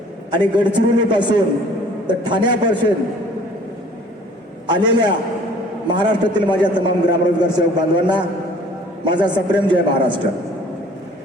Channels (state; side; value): normal; both; correlation 0.52